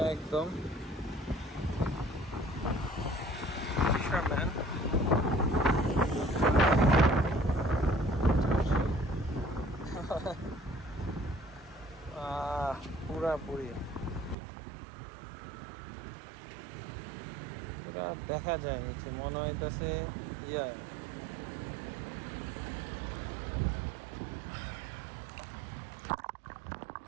একদম fisherman পুরাপুরি পুরা দেখা যায় নিচে মনে হইতেছে ইয়া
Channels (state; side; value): drops out; left; at 14.4 s